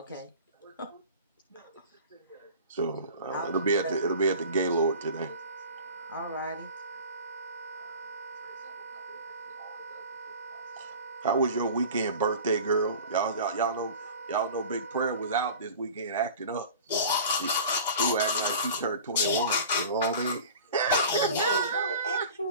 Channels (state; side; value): inverted; both; correlation -0.39